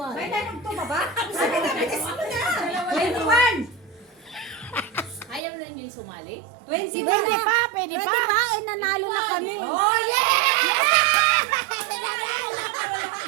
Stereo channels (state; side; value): drops out; left; at 5.4 s